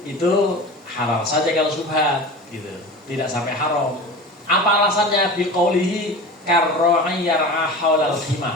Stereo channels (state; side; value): normal; both; correlation 0.33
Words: itu halal saja kalau syubhat gitu. Tidak sampai haram. Apa alasannya? Biqaulihi karra'i yar'a haulal